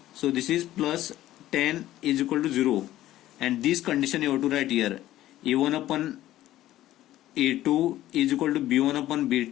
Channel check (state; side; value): quieter; right; 14.3 dB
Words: So this is plus 10 is equal to 0, and this condition you have to write here, A1 upon A2 is equal to B1 upon